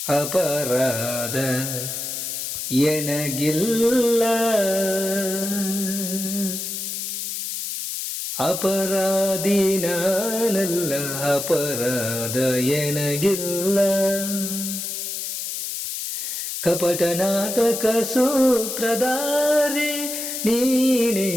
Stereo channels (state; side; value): noise; left; hiss, 5 dB below the sound